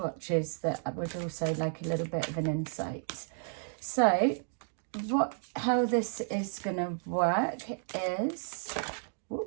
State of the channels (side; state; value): left; silent; 56 dB below the other